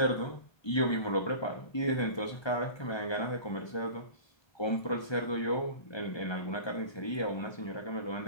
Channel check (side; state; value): right; late; 1.3 ms